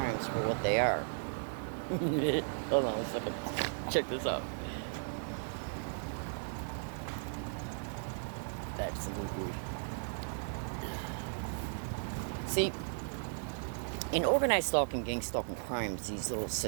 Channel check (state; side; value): silent; left; digital silence